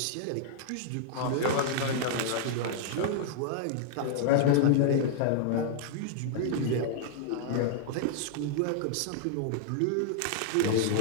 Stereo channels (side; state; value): both; different; correlation -0.01